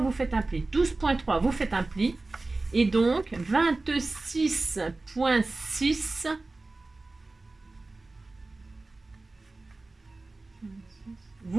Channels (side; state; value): left; quieter; 3.3 dB